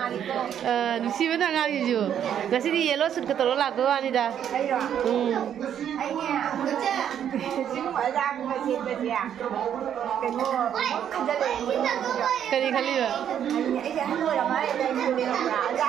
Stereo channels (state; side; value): quieter; left; 9.4 dB